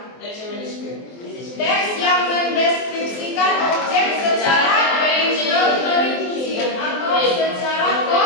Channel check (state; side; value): late; right; 23 ms